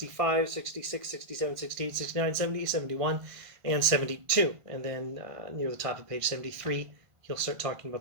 66, 67, 68, 69, 70, 71, and 72. And then near the top of page 73, he'll start talking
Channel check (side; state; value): left; late; 1.5 ms